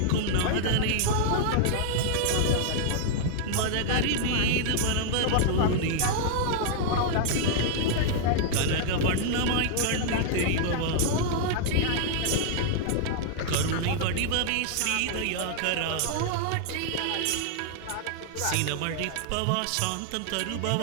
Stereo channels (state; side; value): different; both; correlation -0.01